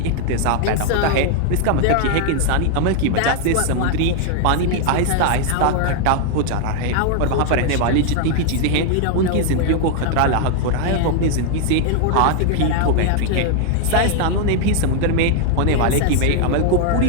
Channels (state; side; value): different; both; correlation 0.00